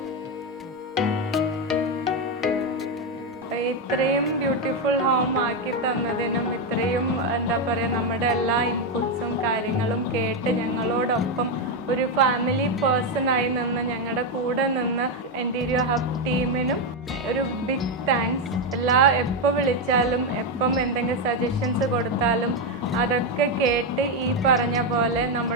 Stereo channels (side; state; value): both; normal; correlation 0.06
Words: ഇത്രയും beautiful home ആക്കി തന്നതിനും ഇത്രയും എന്താ പറയുക നമ്മുടെ എല്ലാ ഇൻപുട്സും കാര്യങ്ങളും കേട്ട് ഞങ്ങളോടൊപ്പം ഒരു ഫാമിലി പേഴ്സണായി നിന്ന് ഞങ്ങളുടെ കൂടെ നിന്ന് ഇൻറ്റീരിയോ ഹബ് ടീമിനും ഒരു ബിഗ് താങ്ക്സ്. എപ്പോൾ വിളിച്ചാലും എപ്പം എന്തെങ്കിലും സജഷൻസ് കൊടുത്താലും അതൊക്കെ കേട്ട് ഈ പറഞ്ഞ പോലെ